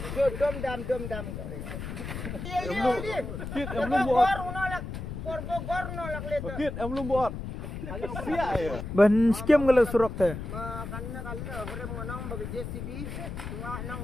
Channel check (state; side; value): noise; left; rumble, 7 dB below the sound